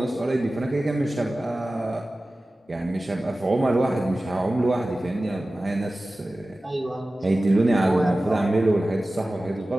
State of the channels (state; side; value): normal; both; correlation 0.96